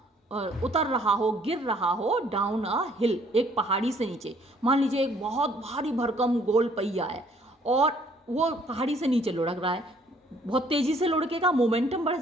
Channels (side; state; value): both; normal; correlation 0.61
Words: उतर रहा हो, गिर रहा हो, डाउन अ हिल, एक पहाड़ी से नीचे। मान लीजिए एक बहुत भारी भरकम गोल पहिया है और वो पहाड़ी से नीचे लुढ़क रहा है, बहुत तेजी से लुढ़केगा, मोमेंटम बढ़